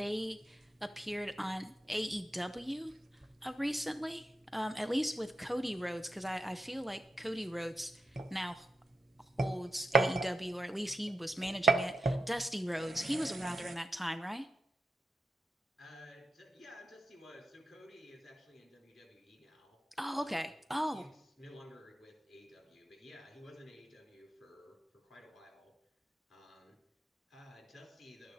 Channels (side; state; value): both; normal; correlation 0.88